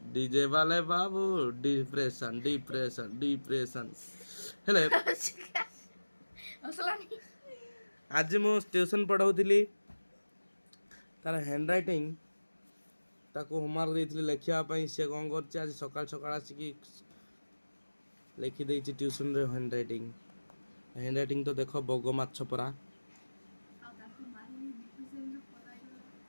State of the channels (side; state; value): both; inverted; correlation -1.00